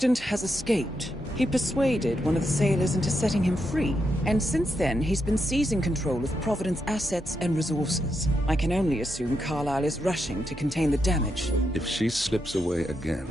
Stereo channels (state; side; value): normal; both; correlation 0.83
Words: has escaped. He persuaded one of the sailors into setting him free. And since then, he's been seizing control of Providence assets and resources. I can only assume Carlisle is rushing to contain the damage. If she slips away again...